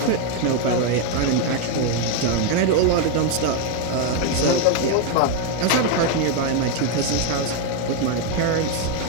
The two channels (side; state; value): both; different; correlation 0.02